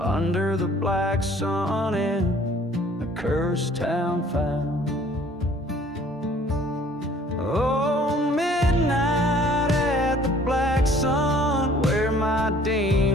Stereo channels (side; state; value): both; normal; correlation 0.55